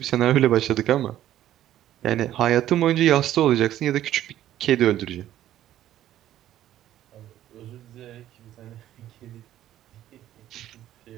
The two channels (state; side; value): quieter; left; 12.6 dB